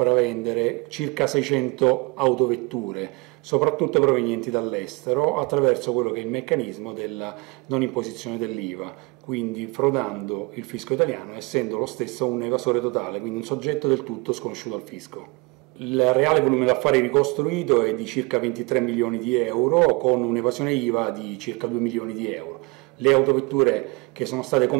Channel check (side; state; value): left; quieter; 27.2 dB